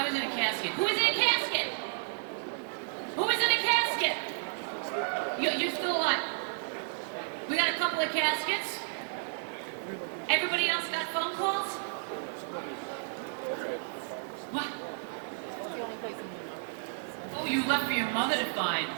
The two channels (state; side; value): silent; left; digital silence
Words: was in a casket. Who is in a casket? Who is in a casket? You're still alive. We got a couple of caskets. Everybody else got phone calls? What? Oh, you left for your mother to find.